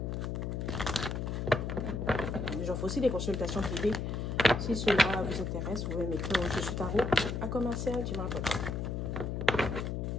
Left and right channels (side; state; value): left; noise; hum, 2 dB below the sound